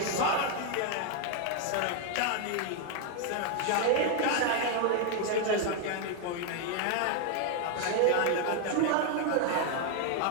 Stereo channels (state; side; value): different; both; correlation 0.00